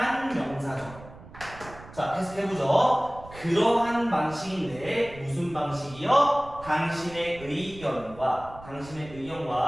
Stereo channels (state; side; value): noise; right; rumble, 18 dB below the sound